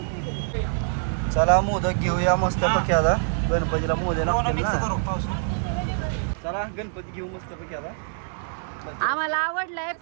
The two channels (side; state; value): left; silent; digital silence